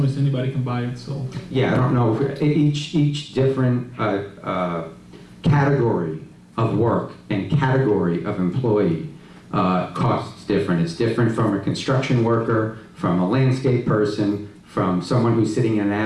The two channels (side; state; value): both; identical; correlation 1.00